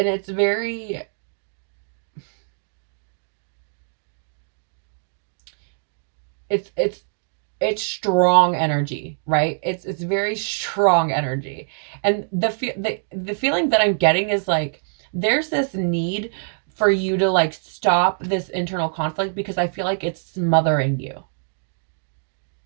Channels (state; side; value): silent; left; digital silence